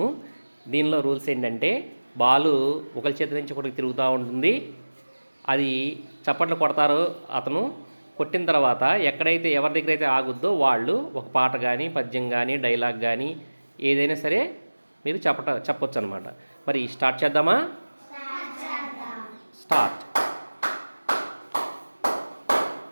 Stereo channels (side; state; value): both; inverted; correlation -1.00